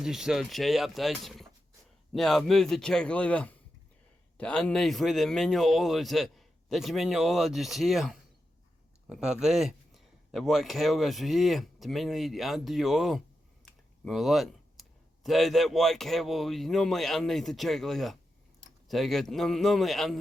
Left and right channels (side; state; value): both; normal; correlation 0.88